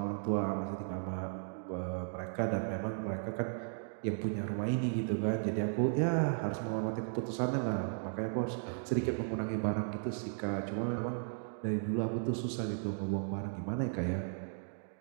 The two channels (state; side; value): silent; left; digital silence